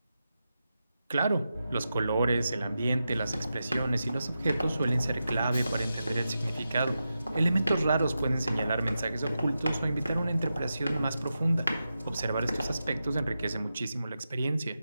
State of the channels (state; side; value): inverted; both; correlation -0.90